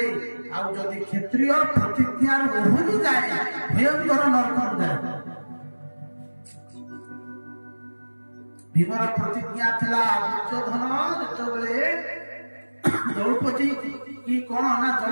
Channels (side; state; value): both; inverted; correlation -1.00